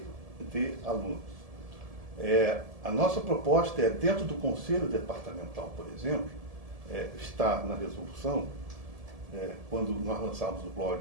de alunos. A nossa proposta é, dentro do Conselho Departamental, por exemplo, está na resolução, quando nós lançarmos o blog,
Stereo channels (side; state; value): left; late; 1.7 ms